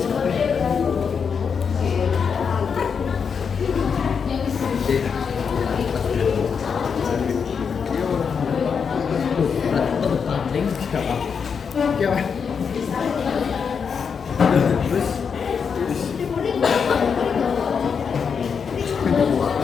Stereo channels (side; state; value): right; quieter; 6.3 dB